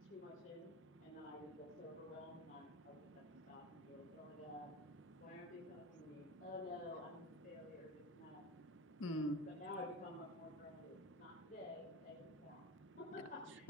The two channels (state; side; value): normal; both; correlation 0.17